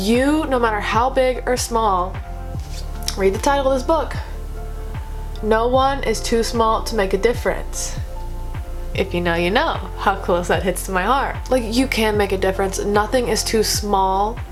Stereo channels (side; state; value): both; identical; correlation 1.00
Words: no matter how big or small, read the title of this book. No one is too small to make a difference. If you know, you know how close that hits to my heart. Like, you can make a difference. Nothing is too small